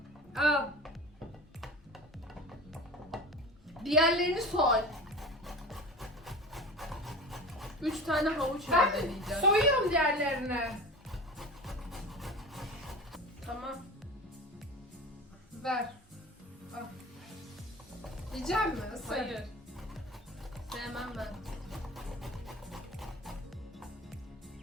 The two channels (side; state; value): both; normal; correlation 0.34